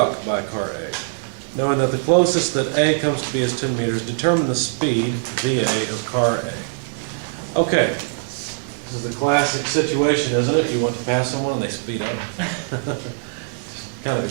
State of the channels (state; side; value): silent; left; digital silence